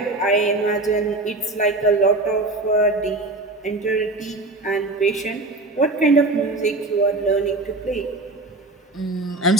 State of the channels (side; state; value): left; quieter; 3.0 dB